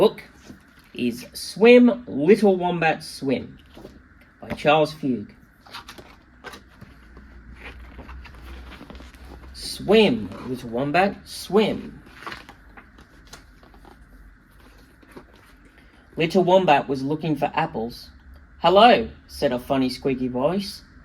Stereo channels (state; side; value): identical; both; correlation 1.00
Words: is Swim, Little Wombat Swim by Charles Fugue. Swim, little wombat, swim. Little Wombat was looking for apples. "Hello," said a funny squeaky voice.